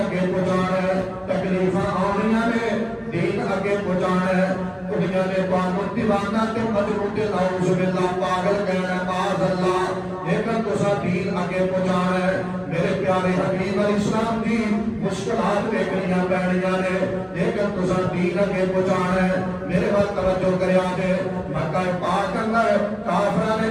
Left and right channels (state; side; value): identical; both; correlation 1.00